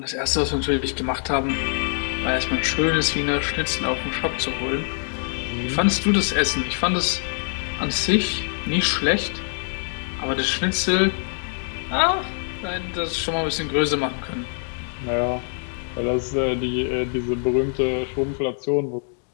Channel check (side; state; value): right; silent; 63 dB below the other